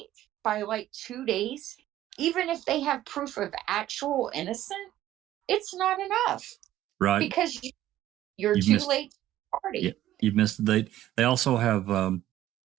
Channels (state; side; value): quieter; left; 13.6 dB